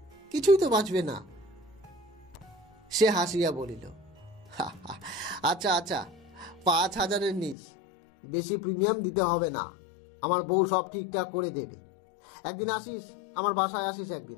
কিছুই তো বাঁচবে না। সে হাসিয়া বলিল, আচ্ছা আচ্ছা, 5,000 নিস, বেশি প্রিমিয়াম দিতে হবে না, আমার বউ সব ঠিকঠাক করে দেবে। একদিন আসিস, আমার বাসায় আসিস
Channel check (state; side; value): drops out; right; at 7.6 s